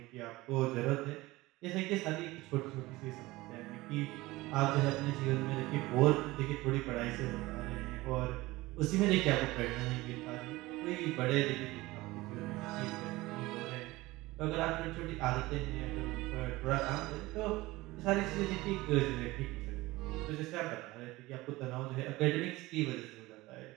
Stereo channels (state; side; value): quieter; left; 19.8 dB